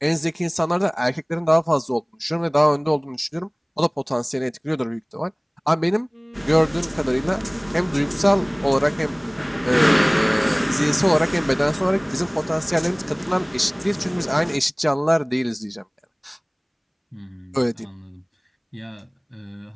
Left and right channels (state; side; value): identical; both; correlation 1.00